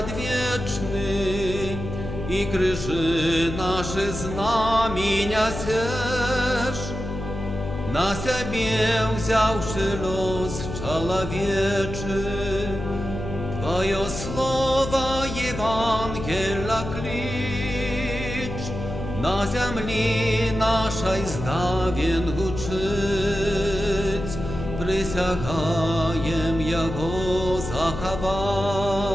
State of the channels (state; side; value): noise; left; hum, 7 dB below the sound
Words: і крижи наші знаміння сеш, на себе взявши лос человечий, Твое слово Евангелия клич, на землі нашій здавен гучить, присягаєм його заховать